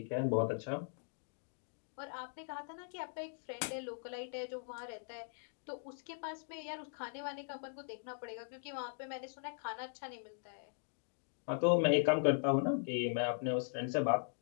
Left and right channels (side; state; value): right; silent; digital silence